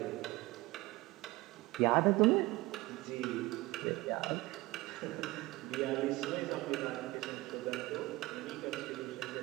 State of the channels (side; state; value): left; quieter; 20.2 dB